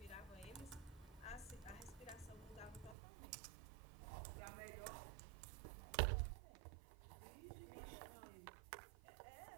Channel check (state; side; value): drops out; left; at 3.0 s